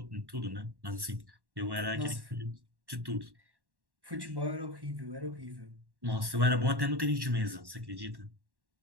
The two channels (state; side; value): late; left; 1.1 ms